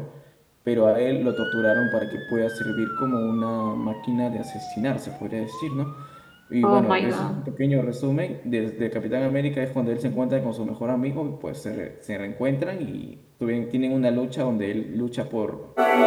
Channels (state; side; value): identical; both; correlation 1.00